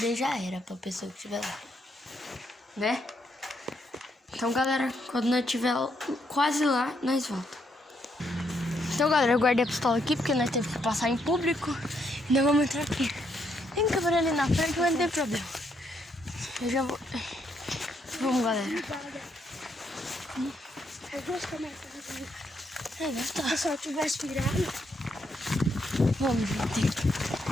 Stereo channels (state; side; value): normal; both; correlation 0.75